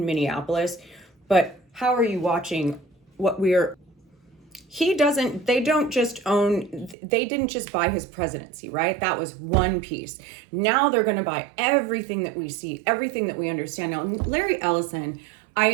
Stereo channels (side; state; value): left; drops out; at 7.0 s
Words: Minneapolis, but how are you watching what they didn't just buy his presidency, right? That was one piece. Now they're going to buy everything that we see, everything that we understand. Now, Larry Ellison,